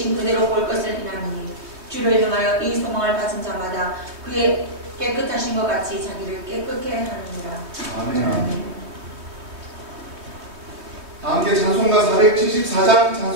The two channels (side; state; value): left; late; 3.2 ms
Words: 그대로 볼 것을 인하니 주를 향하여 이 소망을 가진 자마다 그의 깨끗하신 것 같이 자기를 깨끗게 하느니라. 아멘. 다 함께 찬송가 474장